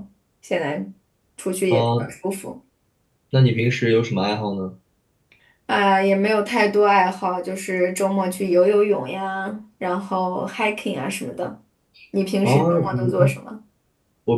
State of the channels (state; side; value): identical; both; correlation 1.00